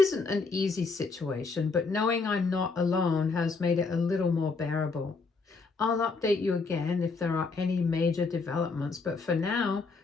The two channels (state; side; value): quieter; right; 4.3 dB